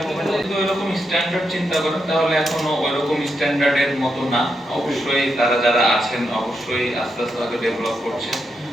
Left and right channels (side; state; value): both; normal; correlation 0.83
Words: যদি ওইরকম স্ট্যান্ডার্ড চিন্তা করেন তাহলে এখনো ওইরকম স্ট্যান্ডার্ডের মতো না। অবশ্যই তারা যারা আছেন অবশ্যই আস্তে আস্তে হয়তো ডেভেলপ করছে।